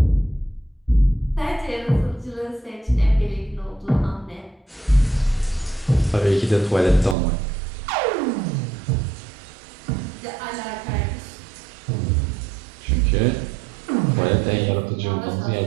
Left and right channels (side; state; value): left; drops out; at 7.2 s